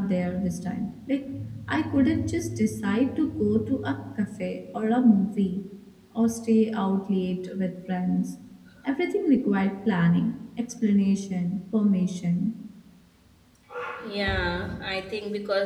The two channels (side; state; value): both; identical; correlation 1.00